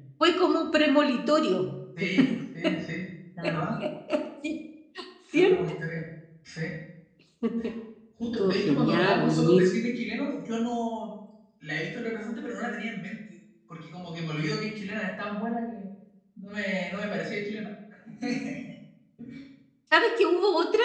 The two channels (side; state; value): both; identical; correlation 1.00